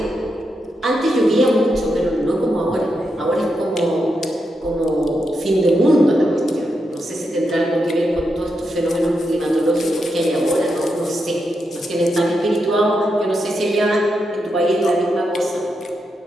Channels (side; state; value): both; normal; correlation 0.85